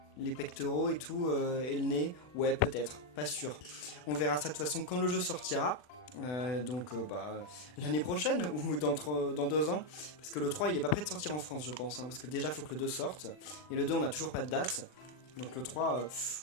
pectoraux et tout, et le nez, ouais peut-être, pas sûr. On verra ça de toute façon quand le jeu sortira, l'année prochaine ou dans 2 ans, parce que le 3 il est pas prêt de sortir en France je pense, hein, parce que déjà il faut que le 2 sorte, et le 2 on a toujours pas de date, donc le 3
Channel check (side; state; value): right; late; 40 ms